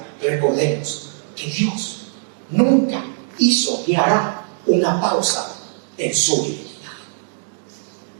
recordemos que Dios nunca hizo ni hará una pausa en su divinidad.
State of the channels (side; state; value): left; silent; digital silence